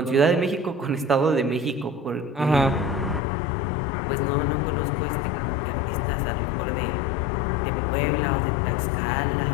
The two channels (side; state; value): right; drops out; at 3.2 s